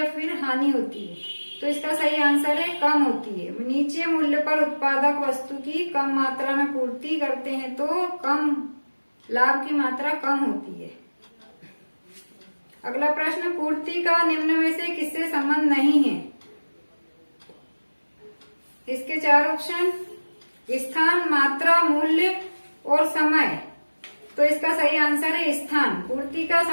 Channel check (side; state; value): both; inverted; correlation -1.00